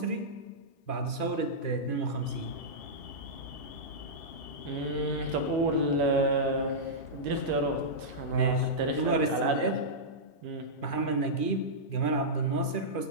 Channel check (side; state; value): right; late; 2.4 ms